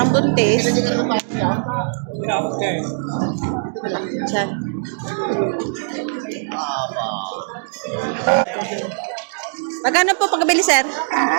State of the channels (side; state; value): left; silent; digital silence